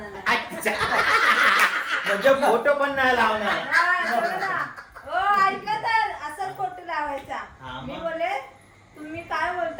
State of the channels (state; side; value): identical; both; correlation 1.00